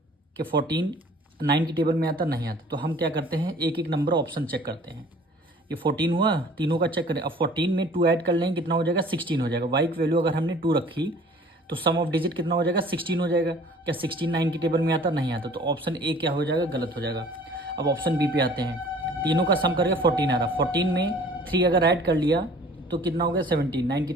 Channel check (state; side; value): normal; both; correlation 0.50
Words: कि 14 9 की टेबल में आता? नहीं आता, तो हम क्या करते हैं? एक एक नंबर ऑप्शन चेक करते हैं। ये 14 हुआ, तीनों का चेक करें। अब 14 में 2 ऐड कर लेंगे कितना हो जाएगा? 16 हो जाएगा। y की वैल्यू अगर हमने 2 रखी तो सम ऑफ डिजिट कितना हो जाएगा? 16 हो जाएगा। क्या 16 9 की टेबल में आता? नहीं आता, तो ऑप्शन ए क्या हो जाएगा? गलत हो जाएगा। अब ऑप्शन बी पे आते हैं। तीनों का सम करके 14 आ रहा। 14 में 3 अगर ऐड कर लिया तो कितना हो गया? 17। 9 की